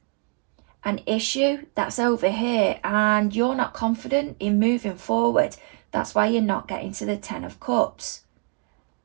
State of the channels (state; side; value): quieter; left; 34.0 dB